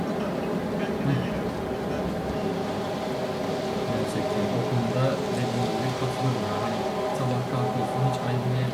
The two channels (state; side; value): identical; both; correlation 1.00